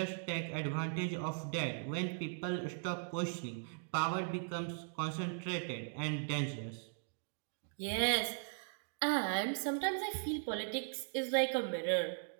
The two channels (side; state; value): left; silent; digital silence